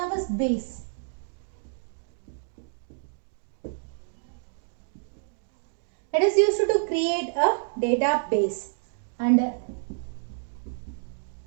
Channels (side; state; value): left; silent; digital silence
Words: Base. It is used to create a database. And